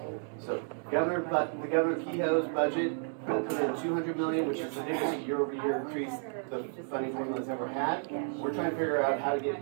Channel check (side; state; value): left; silent; 56 dB below the other